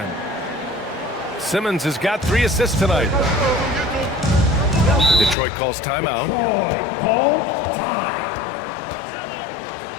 Simmons has got 3 assists tonight. Detroit calls timeout. Calls time.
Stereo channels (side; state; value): right; drops out; at 5.4 s